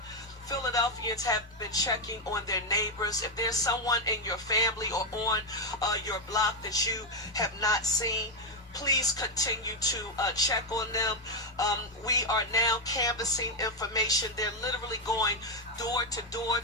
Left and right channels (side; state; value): both; normal; correlation 0.05